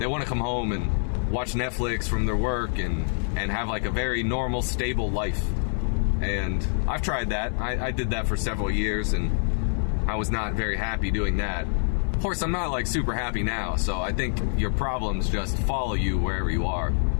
come home and watch Netflix from their work and have like a very normal, stable life. And I've tried that. I did that for several years and I was not very happy doing that. Of course, I'm not like super happy now, so I think your problems just follow you wherever you are.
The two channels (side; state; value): right; silent; 56 dB below the other